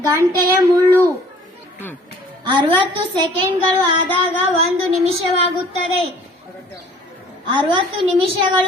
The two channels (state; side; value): normal; both; correlation 0.52